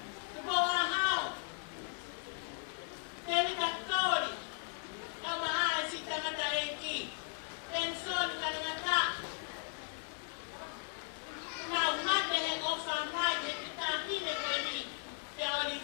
tu bawa hao, David Actori, kama si tangata eki, penson kanangata, na umate he ofa mai he kita hine kwa ni, te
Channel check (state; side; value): silent; right; 53 dB below the other